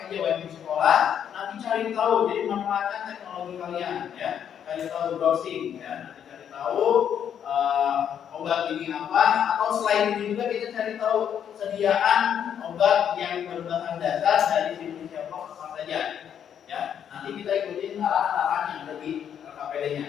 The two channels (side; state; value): right; quieter; 8.8 dB